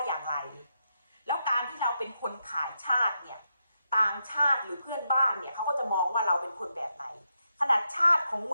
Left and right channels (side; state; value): both; inverted; correlation -0.83